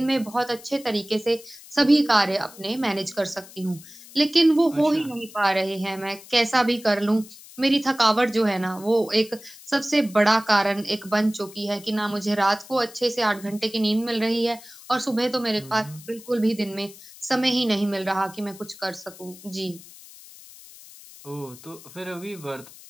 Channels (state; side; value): noise; left; hiss, 19 dB below the sound